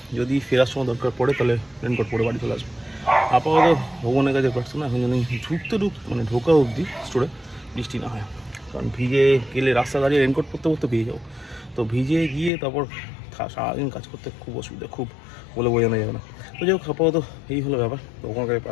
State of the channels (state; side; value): drops out; right; at 12.5 s